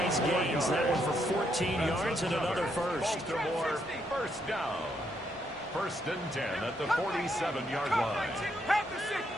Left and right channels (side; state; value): both; normal; correlation 0.76